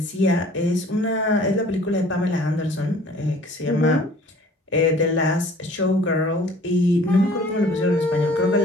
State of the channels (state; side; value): normal; both; correlation 0.51